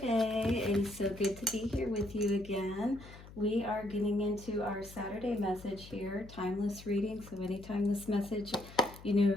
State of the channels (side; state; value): left; noise; hum, 18 dB below the sound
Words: It is so good to be here with you again. We are getting into our Saturday message here, timeless reading. So anytime this message,